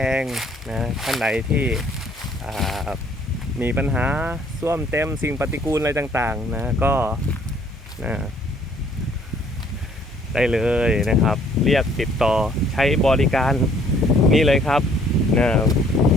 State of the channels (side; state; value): both; normal; correlation 0.61